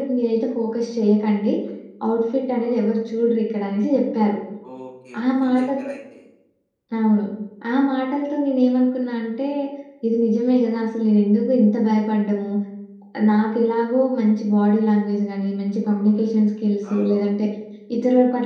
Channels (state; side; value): identical; both; correlation 1.00